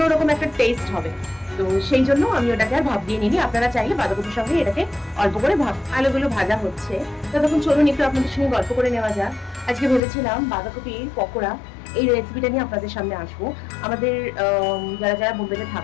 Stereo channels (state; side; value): drops out; right; at 10.0 s